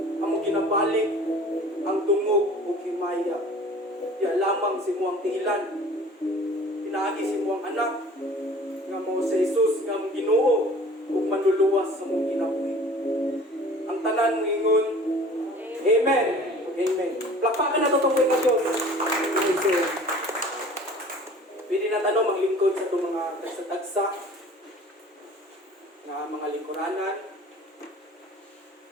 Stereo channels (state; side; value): normal; both; correlation 0.46